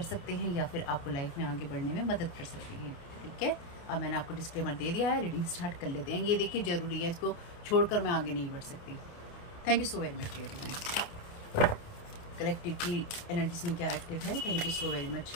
सकते हैं या फिर आपको लाइफ में आगे बढ़ने में मदद कर सकते हैं, ठीक है। अब मैंने आपको डिस्क्लेमर दे दिया है, रीडिंग स्टार्ट कर लेते हैं। ये देखिए ज़रूरी है, इसको छोड़कर मैं आगे नहीं बढ़ सकती। Thank you so very much dear. Collective की एनर्जीज में क्या एक्टिव है, thank you so very much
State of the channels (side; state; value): right; late; 29 ms